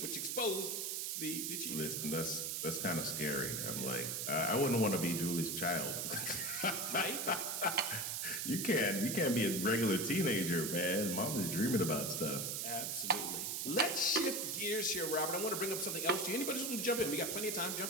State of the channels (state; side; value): noise; right; hiss, 1 dB below the sound